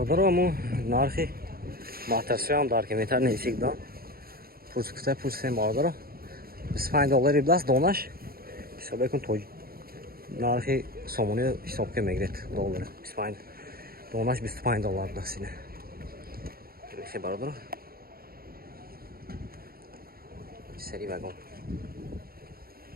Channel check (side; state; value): left; late; 0.44 ms